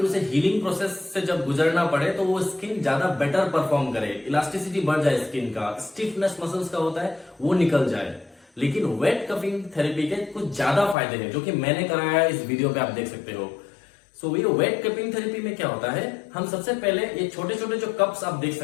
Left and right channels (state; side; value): drops out; right; at 11.0 s